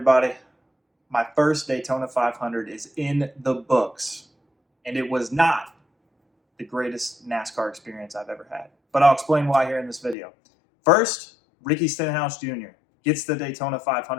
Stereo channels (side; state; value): right; drops out; at 10.2 s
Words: My first Daytona 500 is in the books, and it was not the greatest NASCAR experience I've ever had. But I'll explain why here in this video. First, Ricky Stenhouse Jr. gets the Daytona